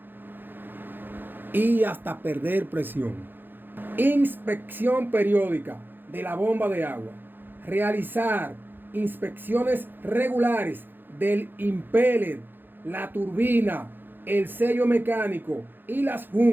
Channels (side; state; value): left; late; 0.095 ms